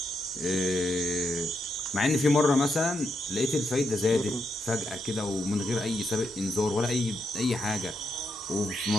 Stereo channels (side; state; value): both; normal; correlation 0.81